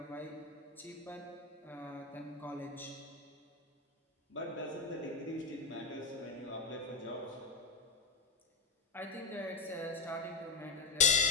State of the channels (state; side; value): quieter; right; 4.4 dB